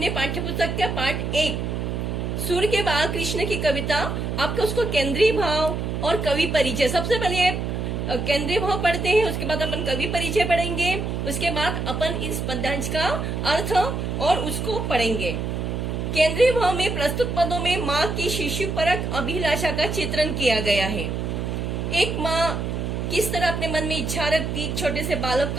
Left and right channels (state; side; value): noise; right; hum, 2 dB below the sound